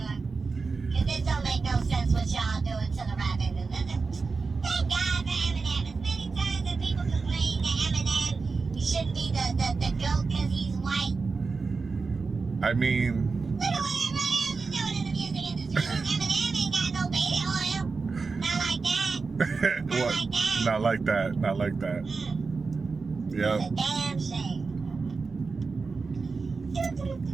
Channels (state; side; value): quieter; left; 4.4 dB